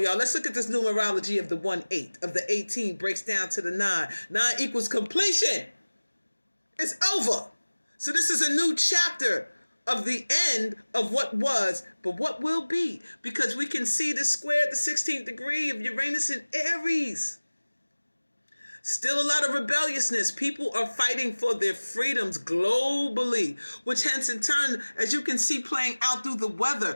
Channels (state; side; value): inverted; both; correlation -1.00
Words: y'all, let's look at this numerology of the 1-8, of the 18 breaks down to the 9. 9 equals completion. It's over. So this is a new chapter of the end of what was, but what will be, because we can see the square at the 16th degree of Uranus in Aries. Still a lot of rebelliousness. People are fighting for their freedoms globally, which hence in turn, as you can see playing out through the